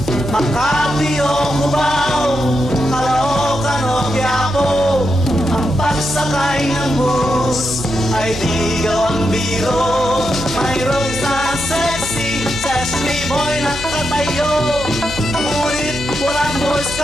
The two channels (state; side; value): noise; right; hum, 11 dB below the sound